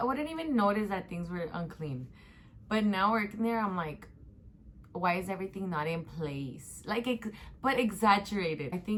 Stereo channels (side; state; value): both; identical; correlation 1.00